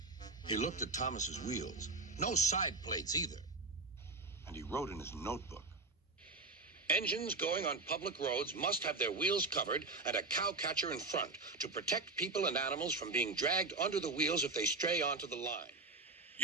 He looked at Thomas's wheels. No side plates either. And he wrote in his notebook. Engines going on public roads must have their wheels covered and a cowcatcher in front to protect people and animals from being dragged under the wheels if they stray onto the line.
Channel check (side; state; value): left; quieter; 3.5 dB